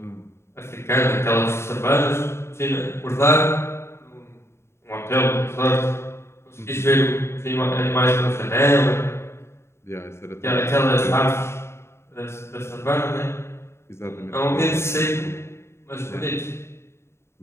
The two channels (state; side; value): late; right; 0.13 ms